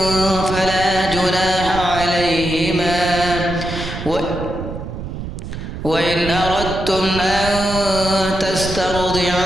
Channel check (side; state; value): right; noise; rumble, 8 dB below the sound